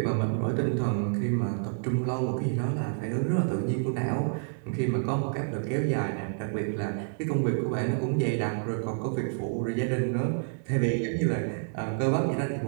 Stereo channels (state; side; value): silent; left; 59 dB below the other